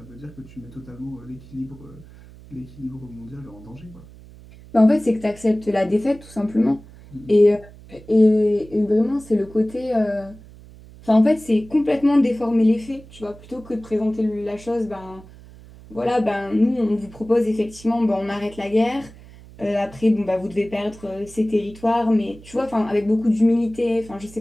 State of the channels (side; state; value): right; noise; hum, 20 dB below the sound